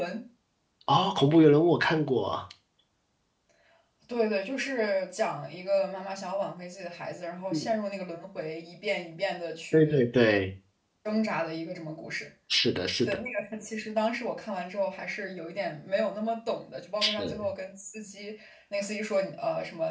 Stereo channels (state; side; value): identical; both; correlation 1.00